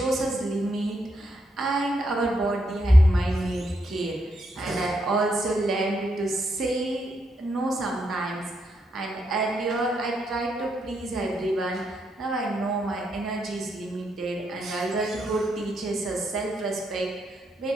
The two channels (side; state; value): both; normal; correlation 0.79